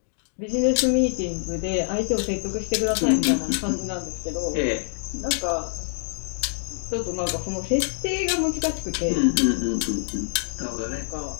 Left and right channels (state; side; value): silent; right; digital silence